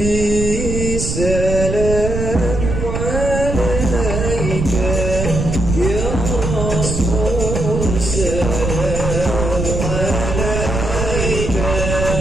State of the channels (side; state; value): right; noise; rumble, 2 dB below the sound